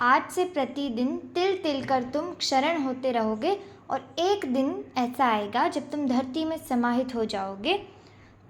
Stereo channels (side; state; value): both; identical; correlation 1.00